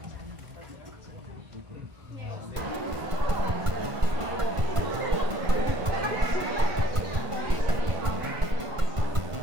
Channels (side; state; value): left; late; 1.5 ms